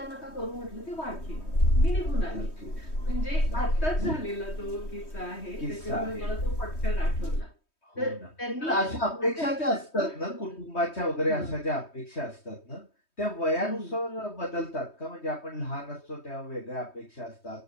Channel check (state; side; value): late; right; 3.2 ms